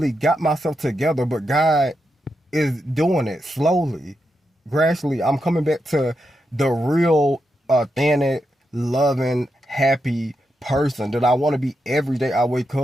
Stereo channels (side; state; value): both; normal; correlation 0.85